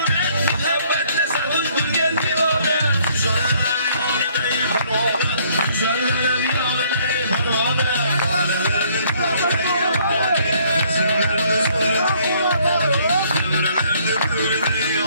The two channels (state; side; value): inverted; both; correlation -0.63